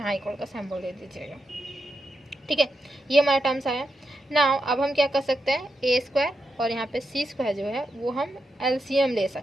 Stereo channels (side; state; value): both; normal; correlation 0.86